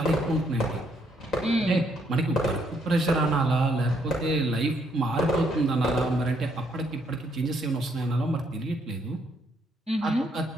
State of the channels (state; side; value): normal; both; correlation 0.72